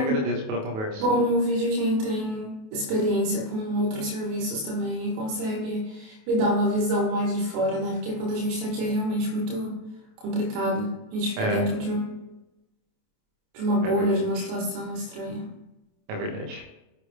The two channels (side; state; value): left; late; 28 ms